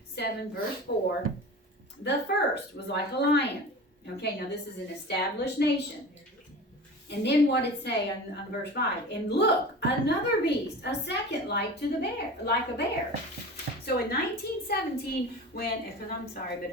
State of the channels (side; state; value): both; normal; correlation 0.35